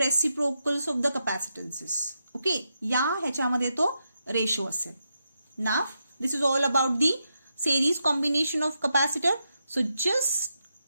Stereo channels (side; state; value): both; inverted; correlation -0.84